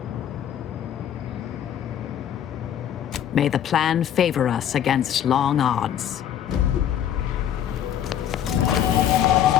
May the plan favor us against long odds.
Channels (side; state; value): right; quieter; 10.0 dB